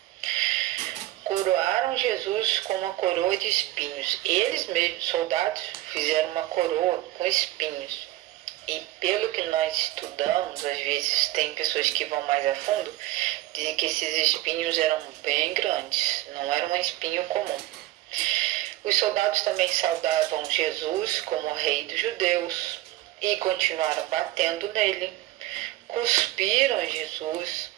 Coroaram Jesus com uma coroa de espinhos. Eles mesmos, soldados, fizeram uma coroa com espinhos. E pelo que nós estudamos, às vezes tem pessoas que vão mais a fundo, dizem que esses espinhos eram bem grandes, não era um espinho comum. Os soldados também saudavam Jesus como rei dos judeus e continuaram batendo nele, cuspiram em Jesus.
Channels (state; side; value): quieter; left; 16.3 dB